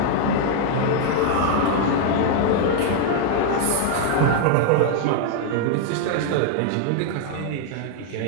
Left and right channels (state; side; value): different; both; correlation 0.00